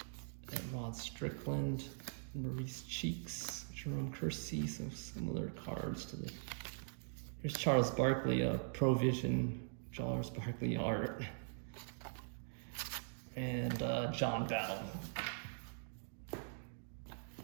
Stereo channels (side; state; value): left; silent; digital silence